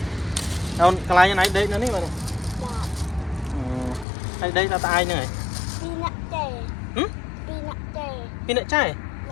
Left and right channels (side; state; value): right; drops out; at 4.0 s